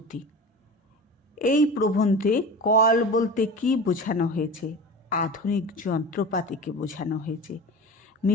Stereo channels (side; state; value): both; normal; correlation 0.33